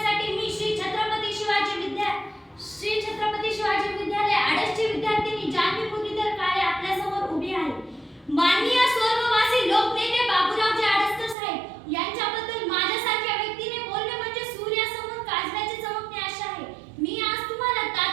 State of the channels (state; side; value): drops out; left; at 11.4 s